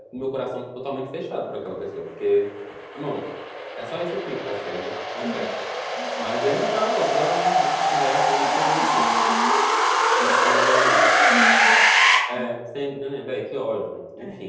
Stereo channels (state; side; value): identical; both; correlation 1.00